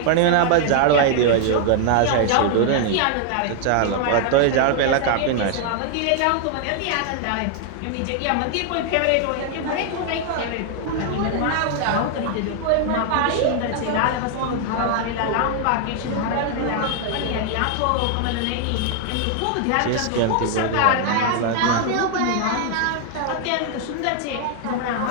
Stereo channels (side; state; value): both; different; correlation 0.00